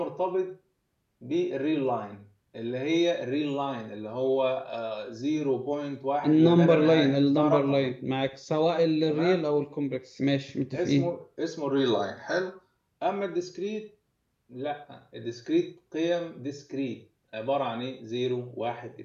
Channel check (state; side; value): identical; both; correlation 1.00